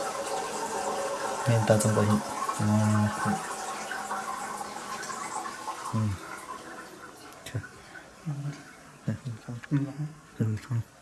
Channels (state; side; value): identical; both; correlation 1.00